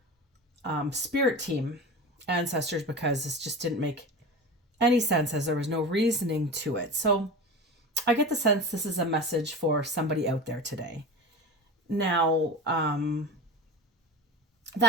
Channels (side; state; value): both; normal; correlation 0.30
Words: spirit team, ancestors, because this just didn't make any sense as there was no reasoning to it. So I get the sense this is a message for somebody out there today. Now,